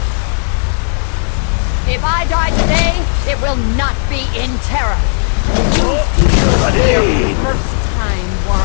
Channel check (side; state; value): right; silent; 68 dB below the other